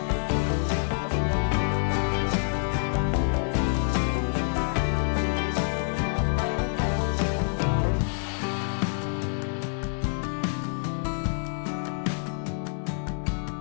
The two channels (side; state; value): right; silent; digital silence